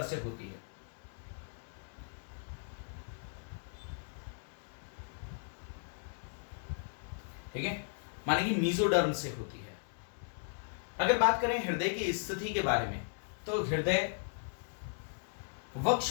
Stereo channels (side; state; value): right; silent; digital silence